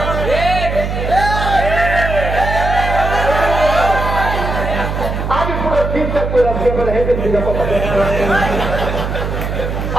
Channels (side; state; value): right; noise; hum, 3 dB below the sound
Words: আমি পুরো ঠিকঠাক করে রাখছি হেঁটে দিকে কথা